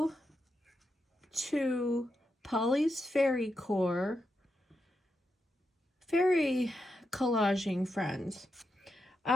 to Polly's Fairy Core fairy collaging friends.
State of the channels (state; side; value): normal; both; correlation 0.85